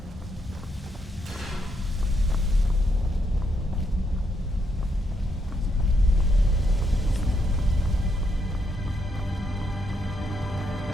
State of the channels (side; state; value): both; normal; correlation 0.78